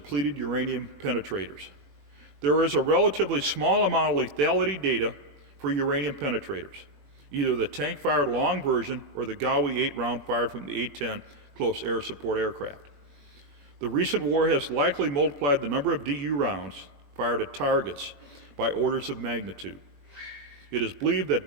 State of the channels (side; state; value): left; late; 21 ms